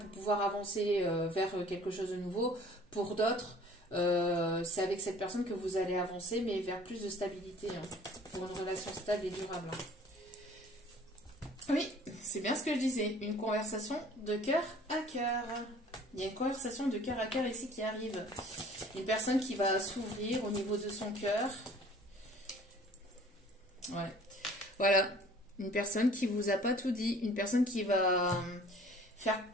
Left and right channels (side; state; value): both; normal; correlation 0.51